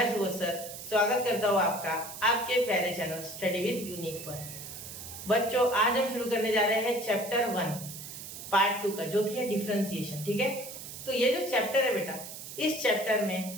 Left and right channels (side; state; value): right; noise; hiss, 11 dB below the sound